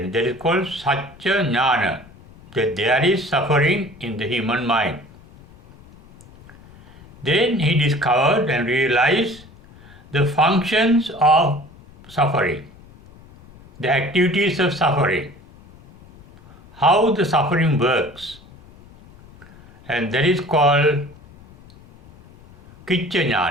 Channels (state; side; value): noise; left; rumble, 23 dB below the sound